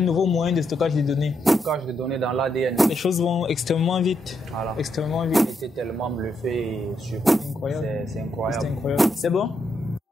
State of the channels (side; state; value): both; normal; correlation 0.79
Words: moyen de stockage de données. Stockage de données dans l'ADN. Les choses vont extrêmement vite. Voilà. Extrêmement vite. J'étais tellement bluffé et surpris. Incroyable. C'est incroyable. C'est incroyable. C'est bon?